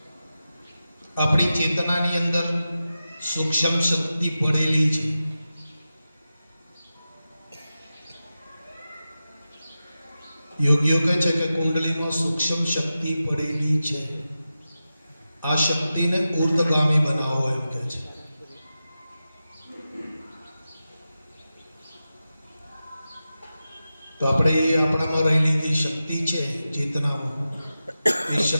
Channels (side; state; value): both; inverted; correlation -0.93